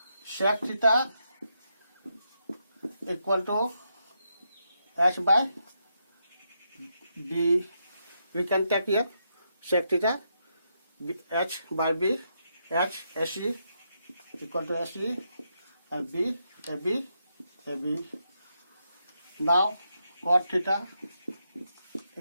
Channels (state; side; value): inverted; both; correlation -0.81